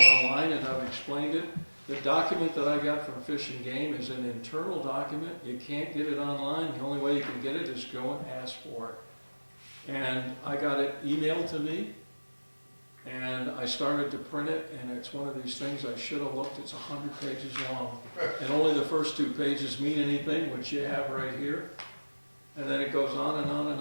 and I've explained it. The document that I got from Fish and Game is an internal document. You can't get it online. The only way you can get it is go and ask for it. And I got it emailed to me, and I started to print it, and it's one of these things I should have looked. It's 100 pages long. And only the first 2 pages mean anything, which you have right here. And then it goes on and on and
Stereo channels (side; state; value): both; inverted; correlation -1.00